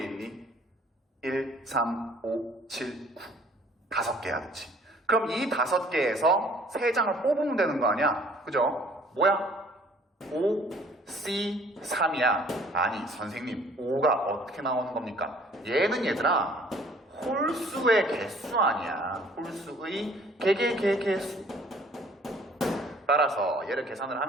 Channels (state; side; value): normal; both; correlation 0.56